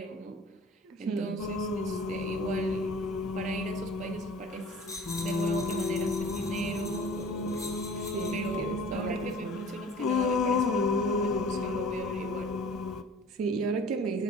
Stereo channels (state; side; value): normal; both; correlation 0.46